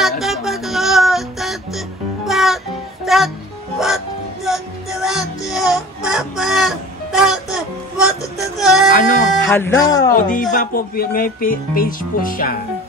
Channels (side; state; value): both; normal; correlation 0.40